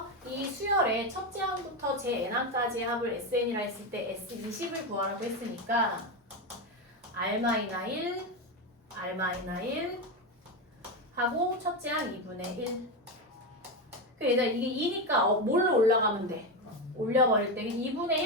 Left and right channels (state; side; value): normal; both; correlation 0.13